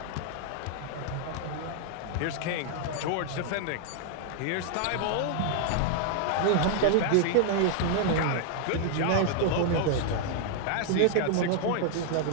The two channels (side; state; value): both; different; correlation -0.01